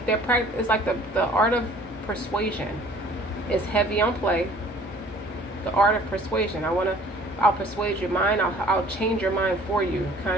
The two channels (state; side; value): normal; both; correlation 0.53